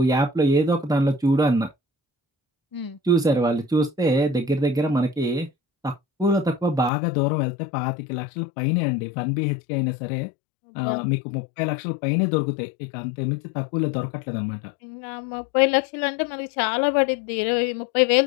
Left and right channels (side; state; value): right; drops out; at 6.9 s